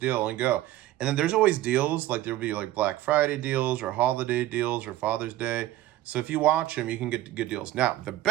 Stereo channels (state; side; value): quieter; left; 14.8 dB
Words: and go. And then there's always deals, like there'll be like Black Friday deals or holiday deals or Father's Day. So if you watch them, you can get good deals. Now, the